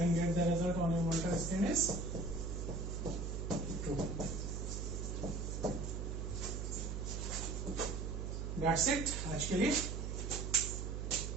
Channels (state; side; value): noise; right; hum, 3 dB below the sound